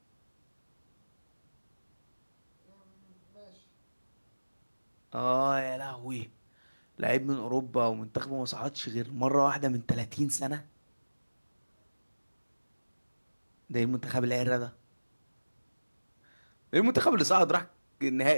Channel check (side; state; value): both; inverted; correlation -1.00